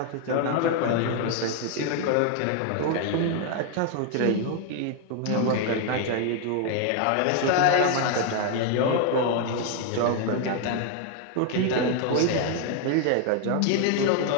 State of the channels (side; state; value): both; different; correlation 0.00